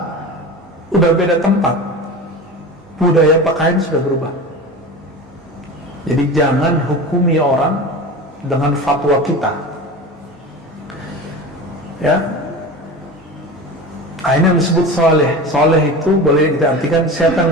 udah beda tempat, budaya pakaian sudah berubah. Jadi jangan hukumi orang dengan fatwa kita, ya. Ini yang disebut soleh. Soleh itu boleh kita artikan siapa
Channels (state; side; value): normal; both; correlation 0.31